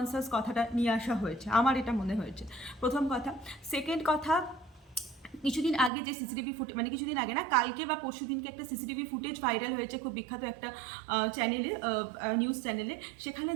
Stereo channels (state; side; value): drops out; left; at 5.9 s